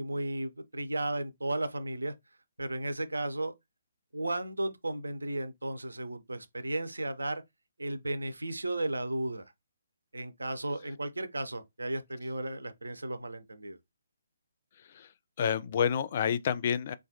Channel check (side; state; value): both; inverted; correlation -0.83